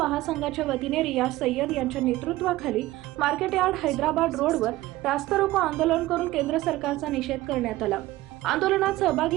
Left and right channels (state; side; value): quieter; left; 17.3 dB